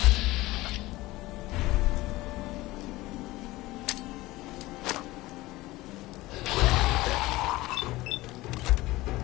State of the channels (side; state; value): right; quieter; 19.0 dB